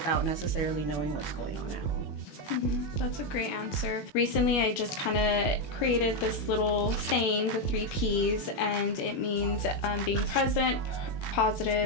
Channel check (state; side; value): late; right; 21 ms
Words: necessarily knowing what's going on at home. Mm-hmm. That's a great answer. Recently, I just kind of created this little saying, the 3 Ps, and it means being present,